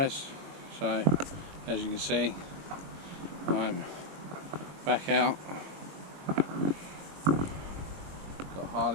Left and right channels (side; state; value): left; late; 21 ms